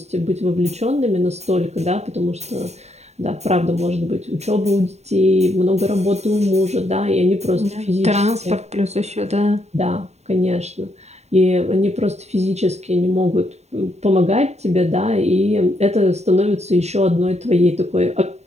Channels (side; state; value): left; late; 0.32 ms